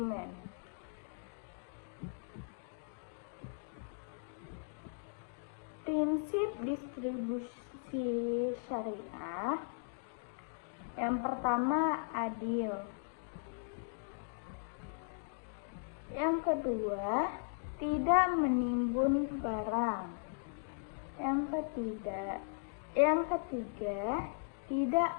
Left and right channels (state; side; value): silent; right; digital silence